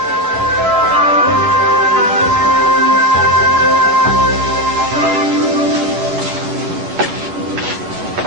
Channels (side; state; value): left; late; 10 ms